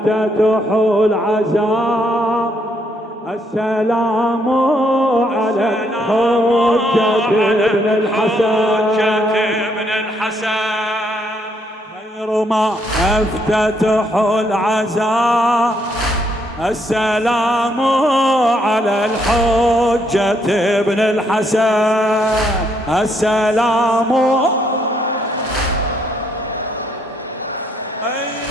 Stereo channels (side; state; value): both; normal; correlation 0.72